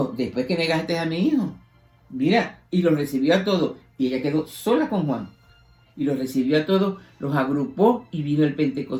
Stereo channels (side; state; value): both; identical; correlation 1.00